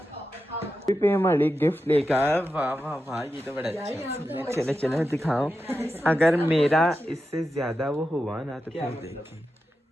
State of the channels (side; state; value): both; normal; correlation 0.90